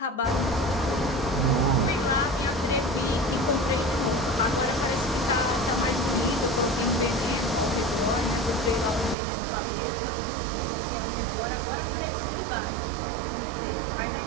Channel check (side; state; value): left; drops out; at 9.2 s